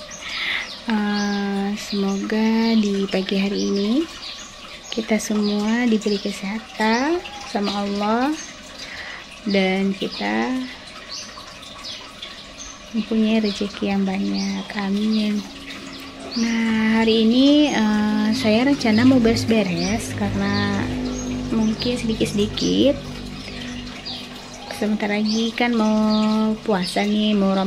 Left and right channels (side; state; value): both; identical; correlation 1.00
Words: Semoga di pagi hari ini kita semua diberi kesehatan sama Allah dan kita mempunyai rezeki yang banyak. Amin. Nah, hari ini saya rencana mau beres-beres karena mungkin sedikit-sedikit. Sebentar lagi kan mau puasa nih, mau